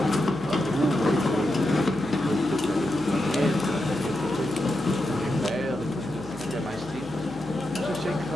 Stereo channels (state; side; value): noise; left; hum, 20 dB below the sound